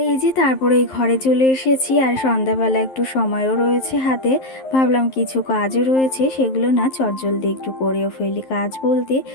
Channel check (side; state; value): right; late; 11 ms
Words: এই যে তারপরে এই ঘরে চলে এসেছি, আর সন্ধ্যাবেলা একটু সময়ও রয়েছে হাতে। ভাবলাম কিছু কাজও রয়েছে, সেগুলো না চটজলদি একটু করেও ফেলি। কাজ বলতে